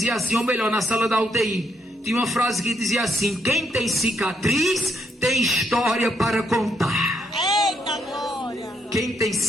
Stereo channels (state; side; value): normal; both; correlation 0.76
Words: assim, ou melhor, na sala da UTI, tinha uma frase que dizia assim: quem tem cicatriz tem história para contar. Eita glória. Quem tem